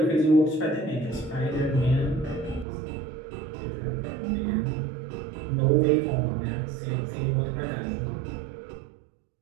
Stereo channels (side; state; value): left; drops out; at 2.7 s